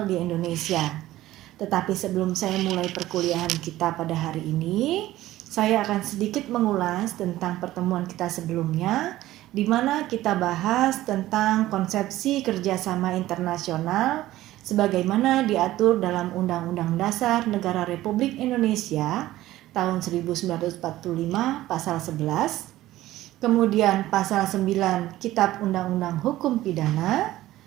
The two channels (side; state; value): left; quieter; 15.5 dB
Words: di Indonesia. Tetapi sebelum saya mulai perkuliahan kita pada hari ini, saya akan sedikit mengulas tentang pertemuan kita sebelumnya, di mana kita bahas tentang konsepsi kerjasama internasional sebagaimana diatur dalam Undang-Undang Dasar Negara Republik Indonesia tahun 1945 pasal 11, kemudian pasal 9 Kitab Undang-Undang Hukum Pidana,